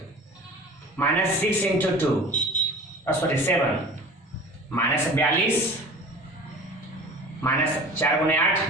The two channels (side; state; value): both; normal; correlation 0.40